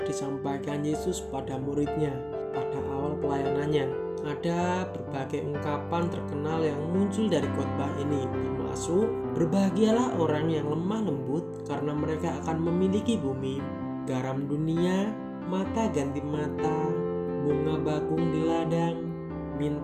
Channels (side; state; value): left; noise; hum, 28 dB below the sound